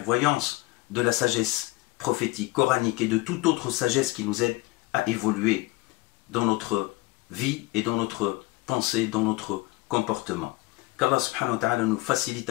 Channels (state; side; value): quieter; right; 20.6 dB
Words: de la sagesse prophétique, coranique et de toute autre sagesse qui nous aide à évoluer dans notre vie et dans notre pensée, dans notre comportement. Qu'Allah subhanahu wa ta'ala nous facilite